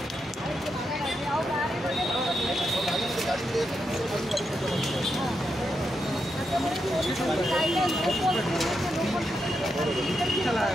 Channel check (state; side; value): normal; both; correlation 0.84